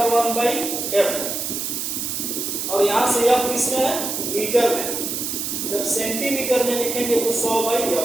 1/f, और यहां से f किसमें है? मीटर में। जब सेंटीमीटर में लिखेंगे तो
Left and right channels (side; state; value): right; noise; hiss, 3 dB below the sound